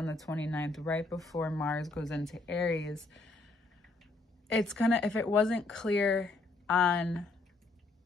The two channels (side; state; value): right; quieter; 3.3 dB